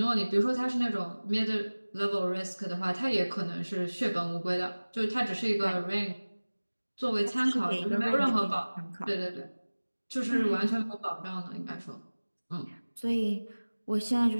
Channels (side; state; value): both; inverted; correlation -1.00